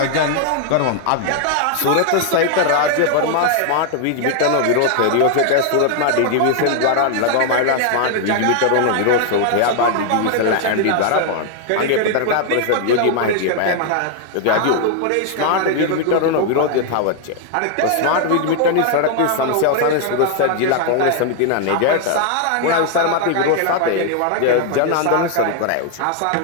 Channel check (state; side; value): different; both; correlation 0.00